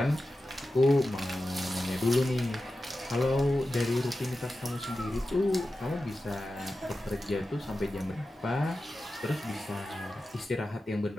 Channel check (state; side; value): normal; both; correlation 0.93